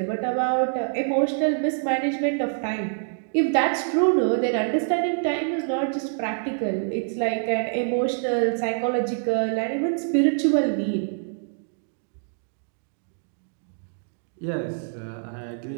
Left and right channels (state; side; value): silent; left; digital silence